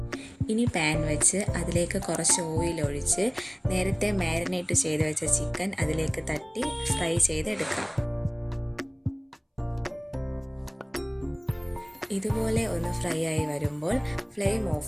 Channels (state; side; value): identical; both; correlation 1.00